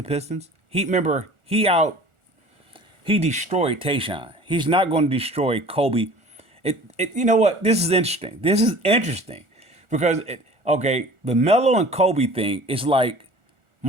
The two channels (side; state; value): left; late; 1.4 ms